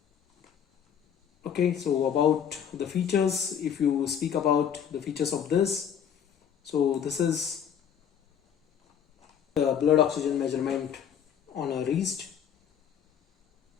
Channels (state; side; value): quieter; right; 8.5 dB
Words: okay, so about the features, if you speak about the features of this, so this is the blood oxygen measurement on a wrist.